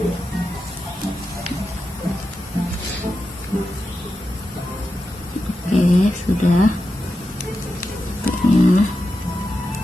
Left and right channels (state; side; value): normal; both; correlation 0.89